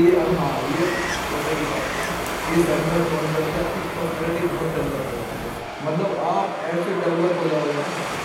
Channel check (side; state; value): both; identical; correlation 1.00